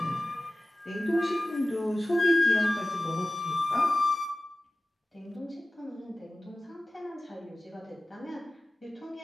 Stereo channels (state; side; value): normal; both; correlation 0.96